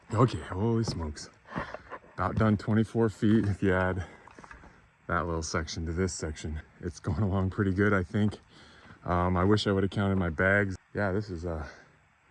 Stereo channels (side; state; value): both; identical; correlation 1.00